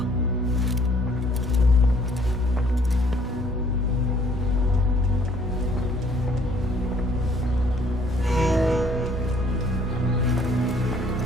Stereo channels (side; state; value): both; normal; correlation 0.61